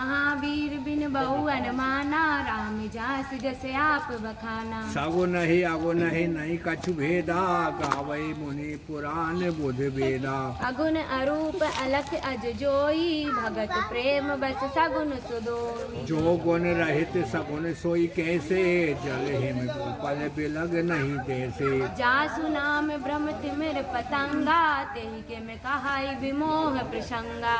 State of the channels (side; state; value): both; identical; correlation 1.00